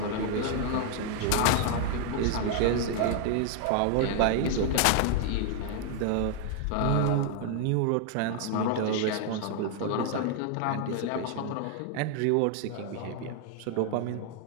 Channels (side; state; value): both; different; correlation 0.00